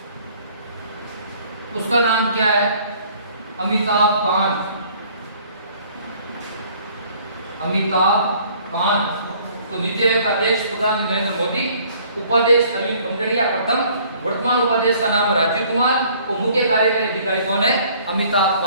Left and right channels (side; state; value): both; inverted; correlation -0.57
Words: उसका नाम क्या है, अमिताभ कांत। अमिताभ कांत। तो नीति आयोग का अध्यक्ष प्रधानमंत्री नरेंद्र मोदी, उपाध्यक्ष अरविंद पनगड़िया प्रथम, वर्तमान उपाध्यक्ष का नाम राजीव कुमार और मुख्य कार्यकारी अधिकारी कौन है, अमिताभ